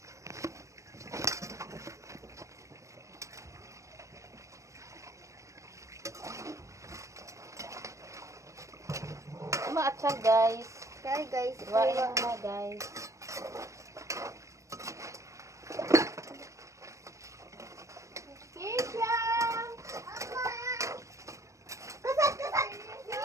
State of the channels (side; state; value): left; late; 0.15 ms